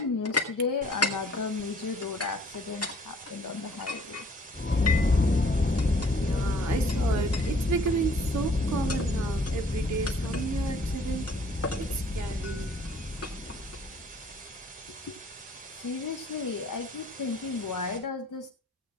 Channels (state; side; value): normal; both; correlation 0.57